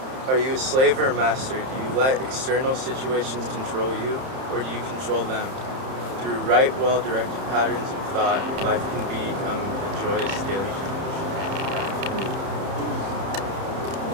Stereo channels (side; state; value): left; late; 31 ms